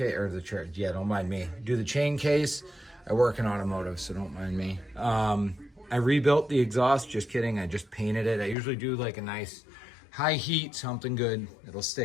or the, yeah, don't mind me, do the chain case. I work in automotive, so don't mind me. I rebuilt the exhaust, just kidding. I just painted it. I usually do like a nice high heat, something good. It'll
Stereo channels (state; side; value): drops out; right; at 8.6 s